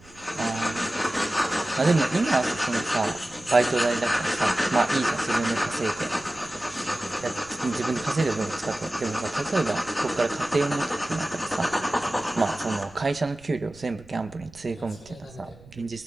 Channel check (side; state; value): right; noise; rumble, 23 dB below the sound